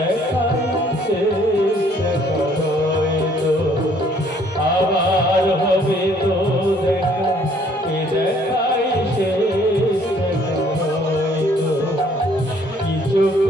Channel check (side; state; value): both; normal; correlation 0.61